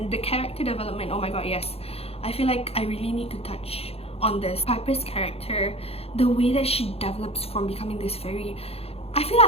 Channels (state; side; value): late; right; 0.29 ms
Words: the character development, oh my god, yes. I feel like I really need to touch on this. Piper's character, the way that she develops from becoming this very, I feel